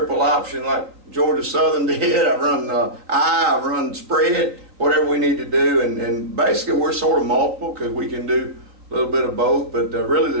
option like Georgia Southern did. I've run spread, whatever we need to do, and basically we're sort of multiple because we can do a little bit of both. But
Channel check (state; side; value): late; left; 3.9 ms